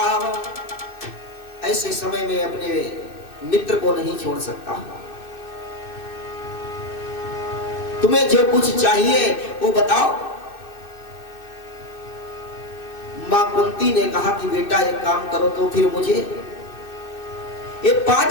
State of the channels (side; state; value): right; late; 2.6 ms